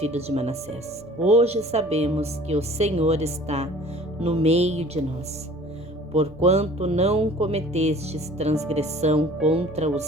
de Manassés: hoje sabemos que o Senhor está no meio de nós, porquanto não cometestes transgressão contra o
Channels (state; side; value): normal; both; correlation 0.49